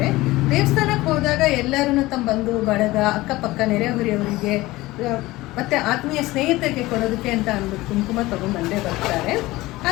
ದೇವಸ್ಥಾನಕ್ಕೆ ಹೋದಾಗ ಎಲ್ಲರೂ ತಮ್ಮ ಬಂಧು ಬಳಗ, ಅಕ್ಕಪಕ್ಕ ನೆರೆಹೊರೆಯವರಿಗೆ ಮತ್ತು ಆತ್ಮೀಯ ಸ್ನೇಹಿತರಿಗೆ ಕೊಡೋದಕ್ಕೆ ಅಂತ ಅಂದ್ಬಿಟ್ಟು ಕುಂಕುಮ ತೊಗೊಂಡು ಬರ್ತಾರೆ.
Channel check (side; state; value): right; quieter; 19.0 dB